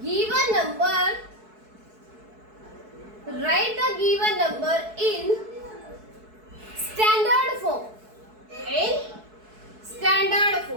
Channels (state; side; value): late; left; 4.6 ms